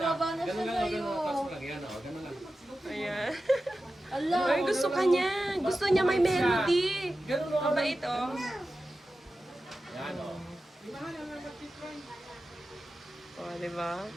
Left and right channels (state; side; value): normal; both; correlation 0.93